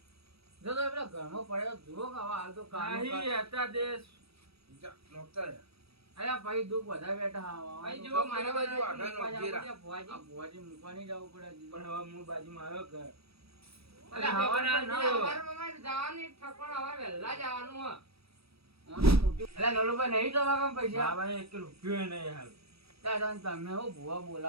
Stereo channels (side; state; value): left; late; 0.77 ms